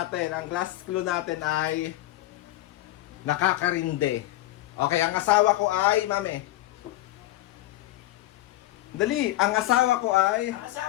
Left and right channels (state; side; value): quieter; right; 16.3 dB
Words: Ang last clue natin ay nakakarinde. Okay, ang asawa ko ay, Mami. Dali, ang asawa ko ay... Ang